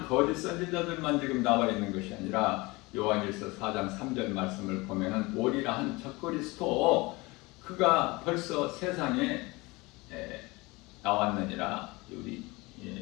거짓 선지자들만 지금 나와 있는 것이 아니라 요한일서 4장 3절 말씀을 보면은 오리라 한 적그리스도 그가 벌써 세상에 나왔느니라 우리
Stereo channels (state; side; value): quieter; right; 23.5 dB